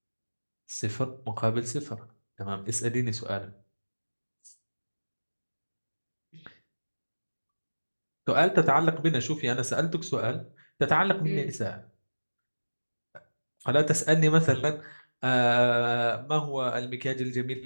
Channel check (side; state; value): both; inverted; correlation -1.00